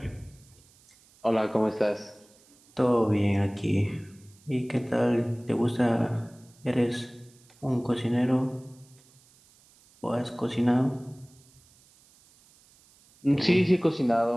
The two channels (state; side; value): noise; right; hiss, 29 dB below the sound